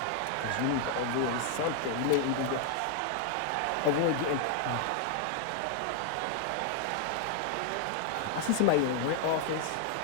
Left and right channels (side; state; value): both; different; correlation 0.00